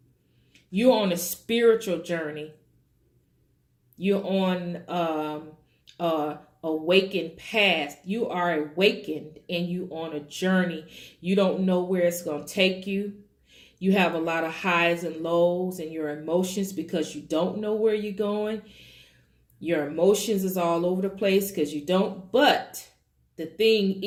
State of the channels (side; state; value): both; identical; correlation 1.00